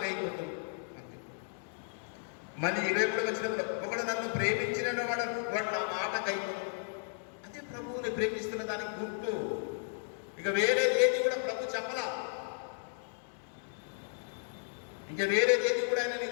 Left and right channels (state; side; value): silent; right; digital silence